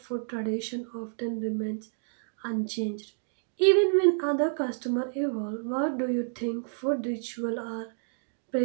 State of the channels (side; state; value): left; silent; digital silence